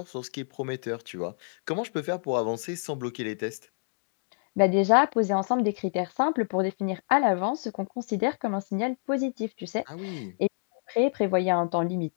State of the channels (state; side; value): silent; right; digital silence